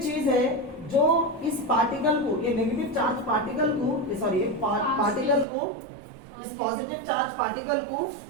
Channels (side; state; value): left; drops out; at 5.5 s